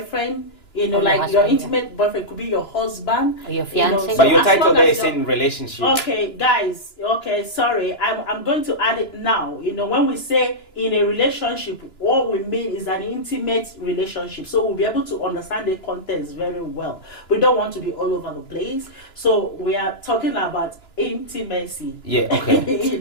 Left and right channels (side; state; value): right; late; 2.9 ms